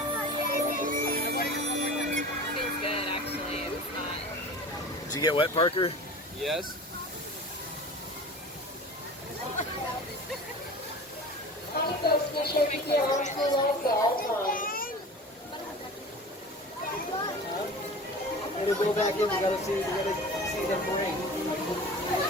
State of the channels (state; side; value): normal; both; correlation 0.37